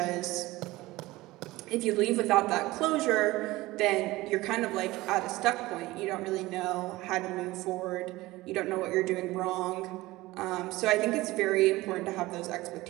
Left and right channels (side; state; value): left; quieter; 19.1 dB